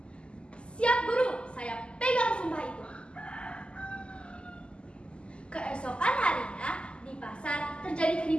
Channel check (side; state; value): right; late; 0.052 ms